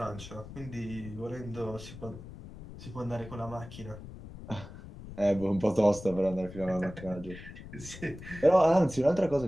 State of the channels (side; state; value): left; noise; rumble, 14 dB below the sound